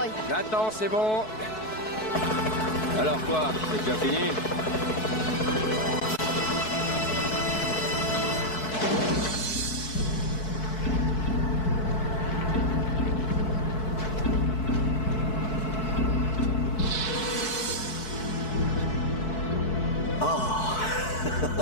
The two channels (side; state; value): right; late; 4.6 ms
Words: Attends, c'est bon. Alors quoi, c'est déjà fini? Oh.